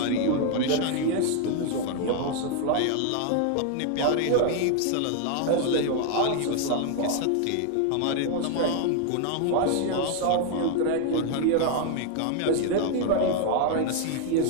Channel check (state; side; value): different; both; correlation 0.00